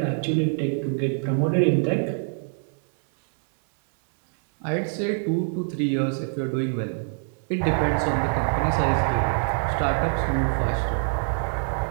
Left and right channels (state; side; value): silent; left; 61 dB below the other